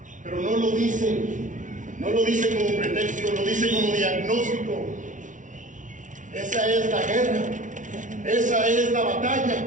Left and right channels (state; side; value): late; left; 0.37 ms